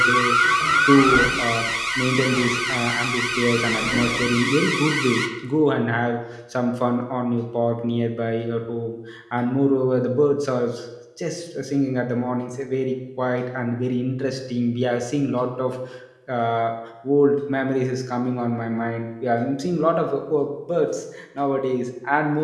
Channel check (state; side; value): identical; both; correlation 1.00